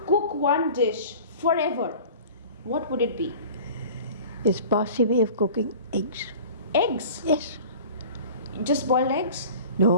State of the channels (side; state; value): both; inverted; correlation -0.42